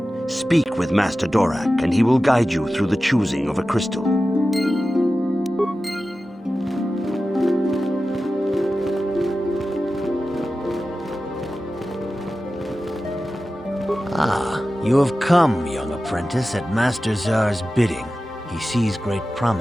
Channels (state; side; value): normal; both; correlation 0.94